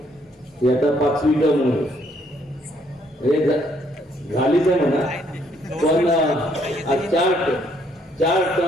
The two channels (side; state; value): both; normal; correlation 0.68